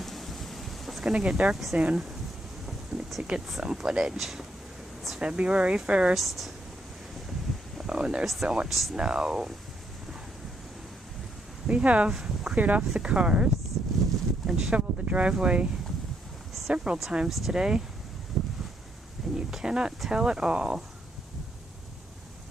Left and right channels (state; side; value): normal; both; correlation 0.75